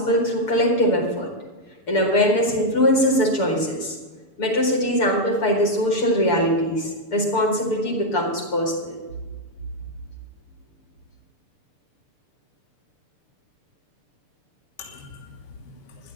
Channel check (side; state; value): right; late; 6.8 ms